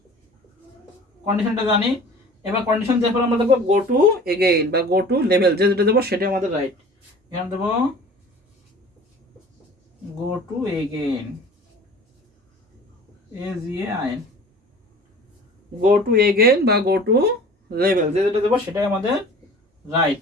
কন্ডিশনটা জানি। এবার কন্ডিশন দেওয়ার পর আমরা দেবো গো টু এগেইন বা গো টু লেভেল, যে যেটা দেবো সেটাই আমাদের রাইট। এখানে দেবো go to again AGAIN, go to again বা গো টু লেভেল, যে যেটা দেবো সেটাই আমাদের রাইট।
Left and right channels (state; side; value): normal; both; correlation 0.43